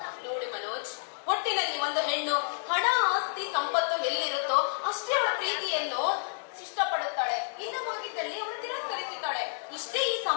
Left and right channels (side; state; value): right; silent; digital silence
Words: ನೋಡಿ ಮನೋಜ್, ಒಟ್ಟಿನಲ್ಲಿ ಒಂದು ಹೆಣ್ಣು ಹಣ ಆಸ್ತಿ ಸಂಪತ್ತು ಎಲ್ಲಿರುತ್ತೋ ಅಷ್ಟೇ ಅವಳ ಪ್ರೀತಿಯನ್ನು ಇಷ್ಟಪಡುತ್ತಾಳೆ. ಇಲ್ಲವಾಗಿದ್ದಲ್ಲಿ ಅವಳು ತಿರಸ್ಕರಿಸುತ್ತಾಳೆ. ಇಷ್ಟೇ ಈ